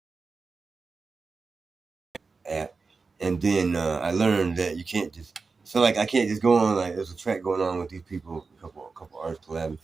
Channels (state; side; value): quieter; left; 4.4 dB